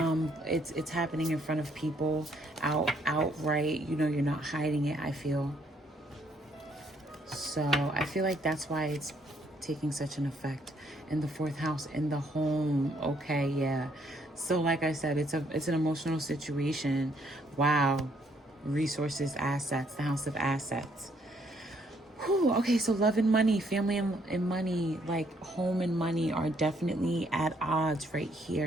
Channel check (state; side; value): normal; both; correlation 0.69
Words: It's happening in front of people, outright. You know, you're not hiding it, I feel. So I feel like that's why it's taking such an effect in the 4th house, in the home. Okay, yeah. So like I said, it's an emotional situation. Wow. Resources, assets, the house of assets. Whew, okay, so love and money, family and money, like home and money are definitely at odds right